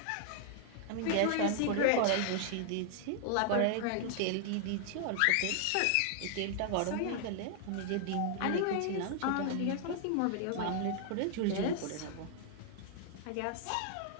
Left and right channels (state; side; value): different; both; correlation 0.00